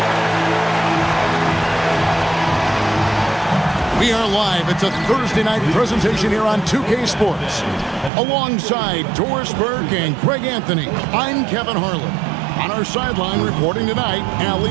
We are live. It's a Thursday night presentation here on 2K Sports. Alongside Doris Burke and Greg Anthony, I'm Kevin Harlan. On our sideline reporting tonight,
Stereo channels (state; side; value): drops out; left; at 8.1 s